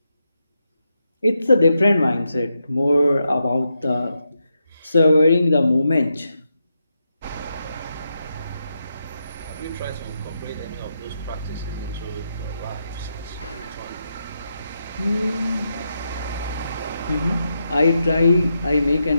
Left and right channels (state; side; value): inverted; both; correlation -0.84